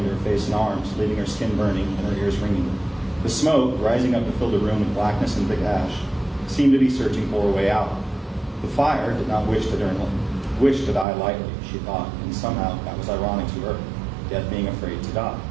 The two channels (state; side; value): drops out; left; at 11.1 s